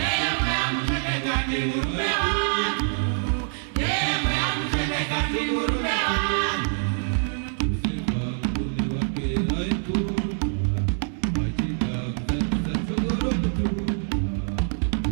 amcheneka ni murume wangu, newe amcheneka ni murume wangu. Yosefa murume wake walifunga, achita kuzatisa chokoro mtunga.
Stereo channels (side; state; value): left; silent; 62 dB below the other